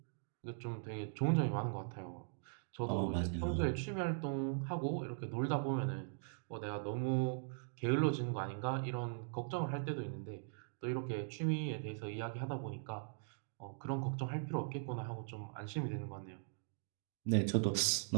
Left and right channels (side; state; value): left; silent; digital silence